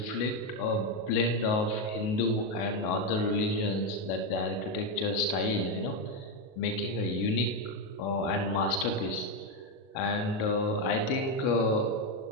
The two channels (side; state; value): right; late; 37 ms